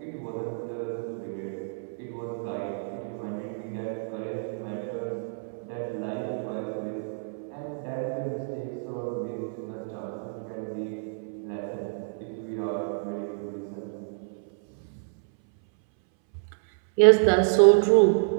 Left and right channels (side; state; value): left; silent; 59 dB below the other